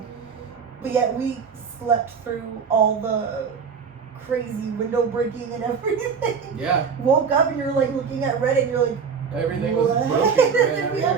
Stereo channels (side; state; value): left; quieter; 6.0 dB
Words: But yet we slept through all the crazy window breaking and everything. Yeah, Woke up and you're like looking at Reddit and you're like, everything was what? broken And right then out we here.